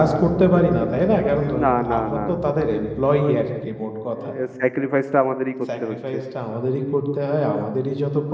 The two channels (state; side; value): identical; both; correlation 1.00